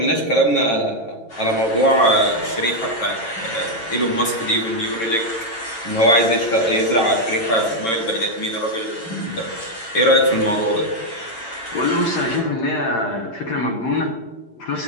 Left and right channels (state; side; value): late; right; 8.8 ms